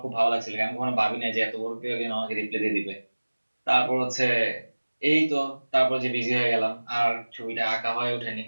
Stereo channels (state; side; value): inverted; both; correlation -1.00